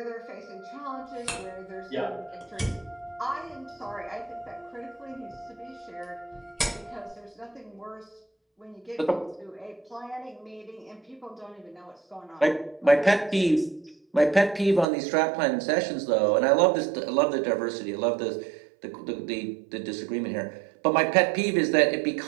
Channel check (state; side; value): drops out; left; at 14.9 s